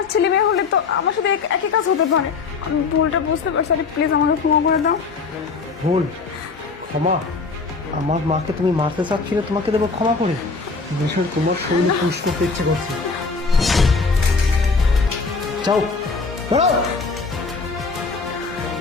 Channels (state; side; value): quieter; right; 4.5 dB